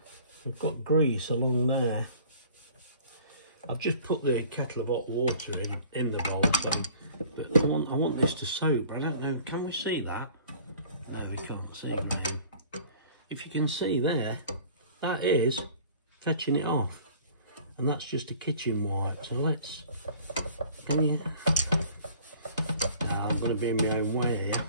we've got grease along there. I've just put the kettle of hot water in the bowl, so, but I want this to soak, but I don't know, can we see that? No, we can't see it now. If you can see there, that is fetching it off, and that's just a kitchen wipe. So let's, can you? Now I'm going to be in my own way here.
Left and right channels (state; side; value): inverted; both; correlation -0.49